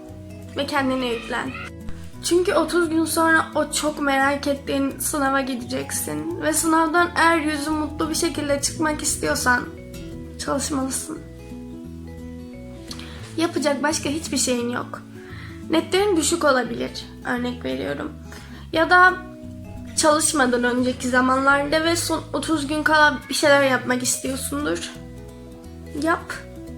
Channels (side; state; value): both; identical; correlation 1.00